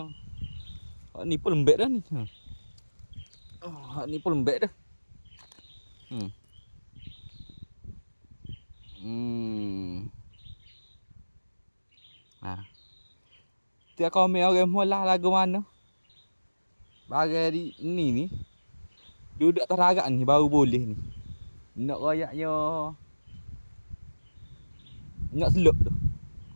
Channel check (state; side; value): inverted; both; correlation -1.00